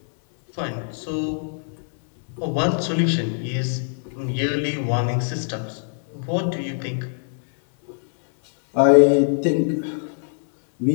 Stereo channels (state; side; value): silent; right; 64 dB below the other